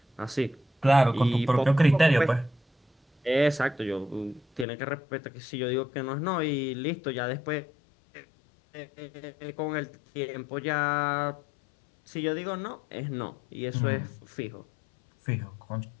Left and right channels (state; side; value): drops out; right; at 4.7 s